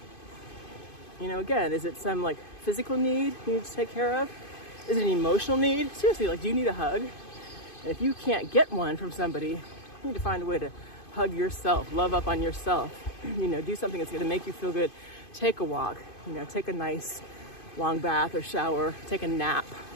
You know, again, is it some like physical need you need to take care of? Is it an emotional need? Seriously, like, do you need a hug? And if you can't get one from somebody, you need to find a way to hug yourself, love up on yourself, you know, do something that's gonna make you feel good. Take a walk, you know, take a nice long bath or shower, take a nap,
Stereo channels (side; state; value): right; late; 2.5 ms